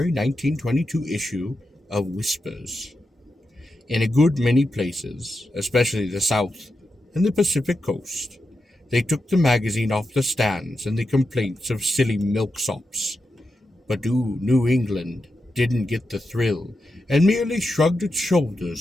1922 issue of Whispers. In a good many places, especially the South and the Pacific Coast, they took the magazine off the stands and the complaints of silly milksops. But New England didn't get the thrill, and merely shrugged its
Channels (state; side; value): normal; both; correlation 0.88